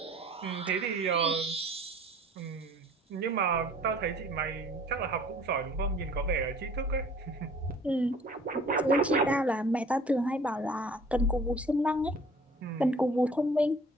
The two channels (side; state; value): both; normal; correlation 0.50